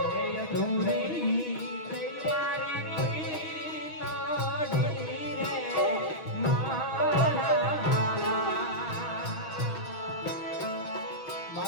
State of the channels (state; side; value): late; right; 6.6 ms